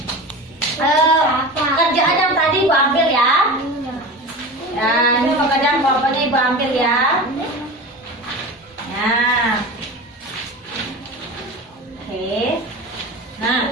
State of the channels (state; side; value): normal; both; correlation 0.30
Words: Nah, oke. Nah,